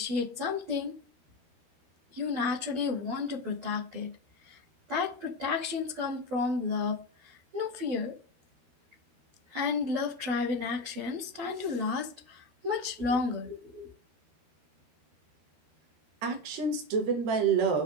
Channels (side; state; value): left; late; 12 ms